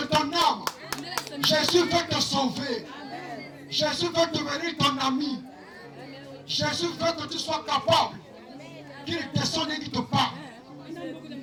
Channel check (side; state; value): both; identical; correlation 1.00